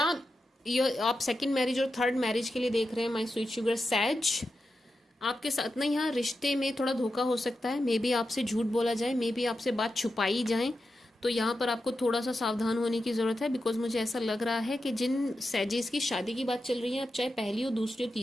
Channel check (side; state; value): both; normal; correlation 0.90